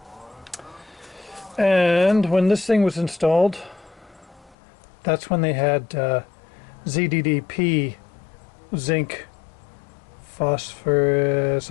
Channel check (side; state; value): right; drops out; at 4.5 s